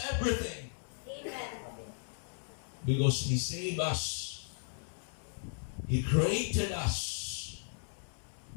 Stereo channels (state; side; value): silent; right; 54 dB below the other